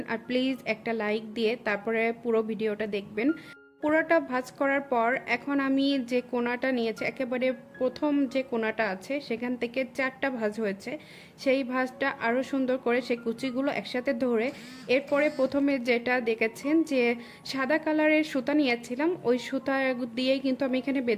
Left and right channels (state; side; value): identical; both; correlation 1.00